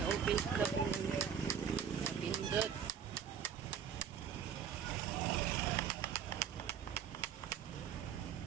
Open na po. Pindot.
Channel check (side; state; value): left; quieter; 8.0 dB